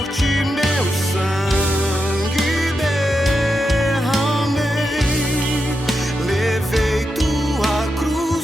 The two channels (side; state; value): both; normal; correlation 0.87